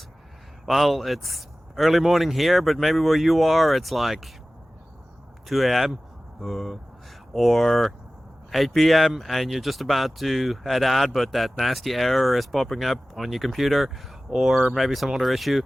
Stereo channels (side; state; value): both; normal; correlation 0.97